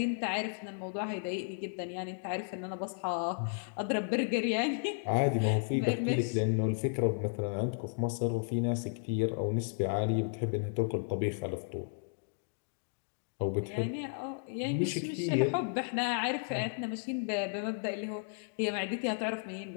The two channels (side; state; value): right; silent; digital silence